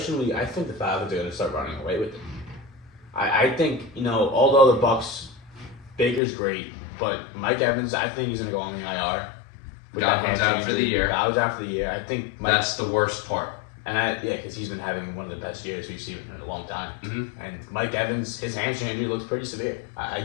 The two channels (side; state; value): right; drops out; at 6.2 s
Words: think the Falcons are going to start running away with it. I think, although the Bucs, Baker's great, but Mike Evans, I think he's going to go on the IR. Godwin's out for the year. Godwin's out for the year. I think that's the worst part. And because he's been having one of the best years we've seen in a long time. Mm-hmm. And Mike Evans, his hamstring injury looks pretty severe. I